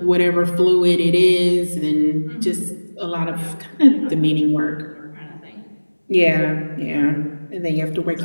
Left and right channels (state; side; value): inverted; both; correlation -1.00